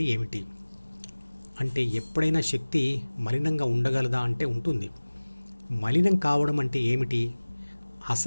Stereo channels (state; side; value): inverted; both; correlation -1.00